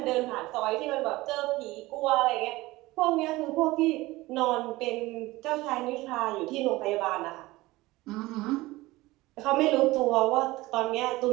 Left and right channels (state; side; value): quieter; left; 19.6 dB